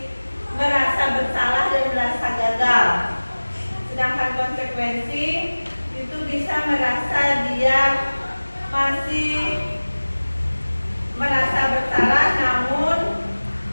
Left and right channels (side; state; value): both; inverted; correlation -1.00